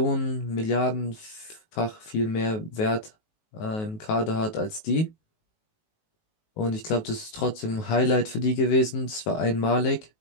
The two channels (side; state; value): right; late; 19 ms